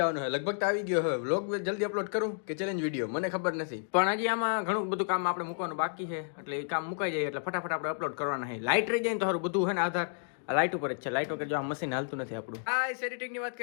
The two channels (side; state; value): right; silent; digital silence